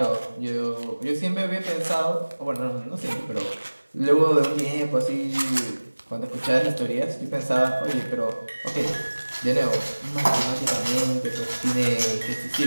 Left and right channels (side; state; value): both; inverted; correlation -1.00